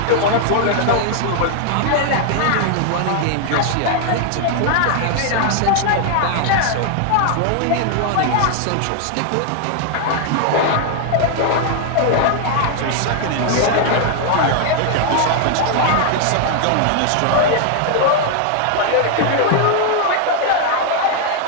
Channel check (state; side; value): different; both; correlation 0.00